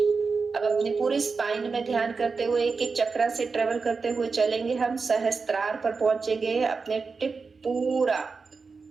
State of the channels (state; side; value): quieter; left; 4.7 dB